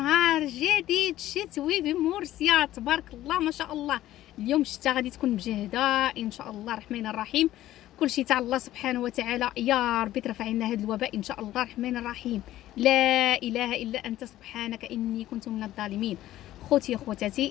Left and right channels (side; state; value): right; quieter; 14.2 dB